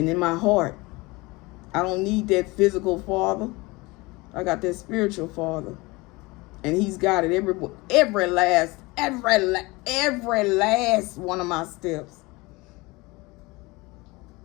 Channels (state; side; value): quieter; right; 23.4 dB